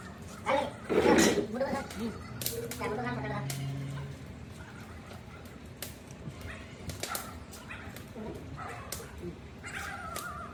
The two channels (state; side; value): identical; both; correlation 1.00